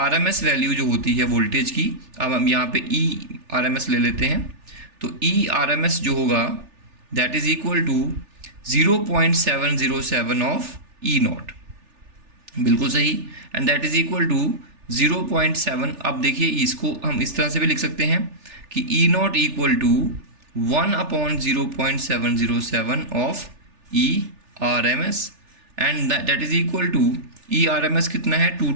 वैल्यू जो होती है वोल्टेज की। अब हम यहाँ पे आरएमएस ले लेते हैं। तो आरएमएस जो होगा, that is equal to 0.707 of E nought. बिल्कुल सही। And that is equal to 0.7। अब देखिए, इसको हम इस तरह से भी लिख सकते हैं कि E naught equal to 1/0.707 of E R M S. And that is equal to E R M S कितना है,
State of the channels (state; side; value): late; left; 3.4 ms